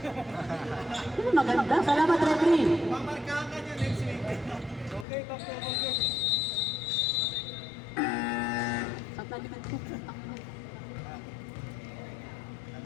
Ayun, maganda. Salamat, referee. Mamarkahan ka niya next week. Okay, okay. Saan talikad ko?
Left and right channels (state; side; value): drops out; right; at 5.1 s